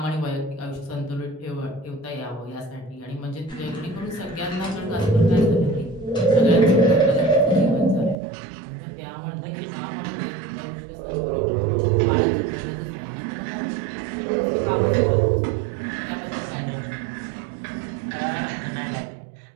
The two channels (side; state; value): left; drops out; at 8.2 s